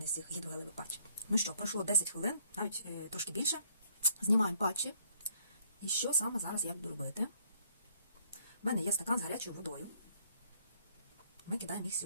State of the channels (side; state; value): both; inverted; correlation -0.65